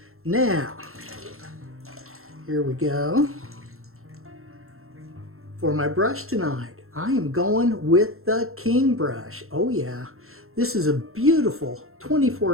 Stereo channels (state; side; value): late; left; 0.62 ms